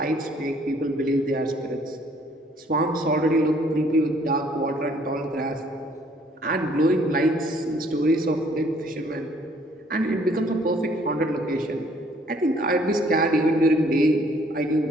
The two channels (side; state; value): both; normal; correlation 0.62